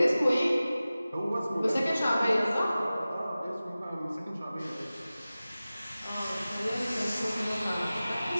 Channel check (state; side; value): inverted; both; correlation -0.96